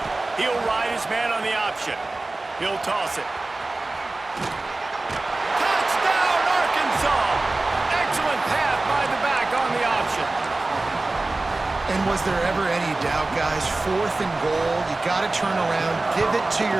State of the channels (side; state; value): left; quieter; 3.1 dB